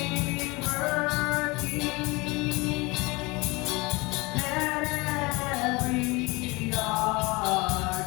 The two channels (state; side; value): quieter; right; 24.7 dB